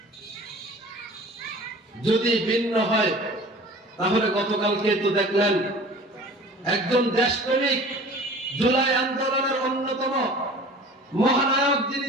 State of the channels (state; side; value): normal; both; correlation 0.43